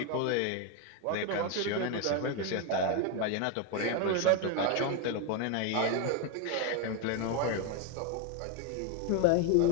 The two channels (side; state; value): both; different; correlation 0.02